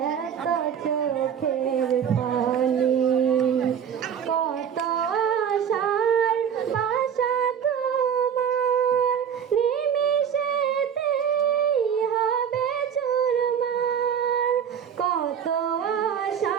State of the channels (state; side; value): quieter; left; 8.2 dB